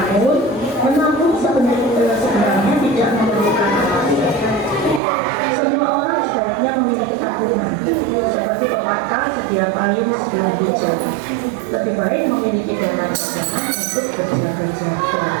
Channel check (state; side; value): drops out; left; at 5.0 s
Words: menabung sebenarnya tidak memerlukan alasan. Semua orang sebaiknya memiliki tabungan, seperti pepatah sedia payung sebelum hujan. Lebih baik memiliki dana cadangan untuk berjaga-jaga.